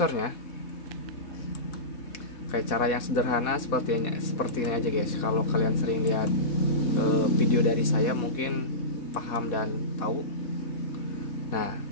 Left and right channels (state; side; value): late; right; 4.1 ms